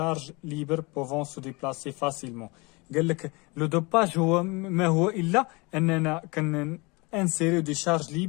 ليبر بوفون سو ديبلاسي فاسيلمون. قال لك لو دوباج هو ما هو الا اننا انسيريو دي شارج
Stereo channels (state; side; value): quieter; right; 26.8 dB